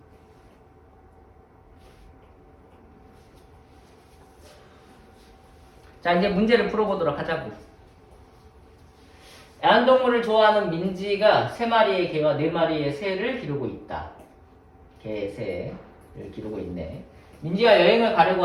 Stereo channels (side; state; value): both; identical; correlation 1.00